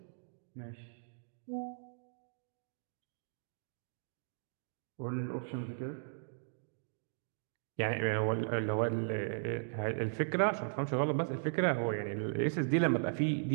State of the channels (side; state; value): left; silent; digital silence